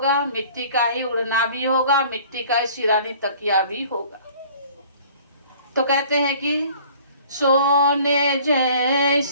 मिट्टी का ही उड़ना भी होगा, मिट्टी का ही सिरानी तकिया भी होगा। तो कहते हैं कि सोने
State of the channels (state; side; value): inverted; both; correlation -0.50